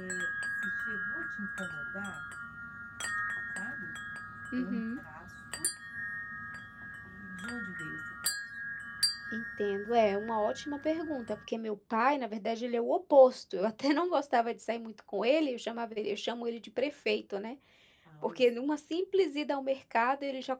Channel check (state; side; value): identical; both; correlation 1.00